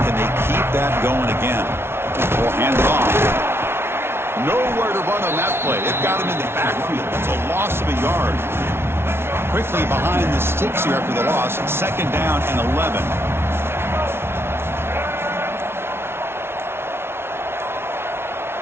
they keep that going again? We'll hand it off. Nowhere to run on that play. They've got him in the backfield. It's a loss of a yard. Quickly behind the sticks here after the loss. 2nd down and 11.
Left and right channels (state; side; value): late; left; 0.12 ms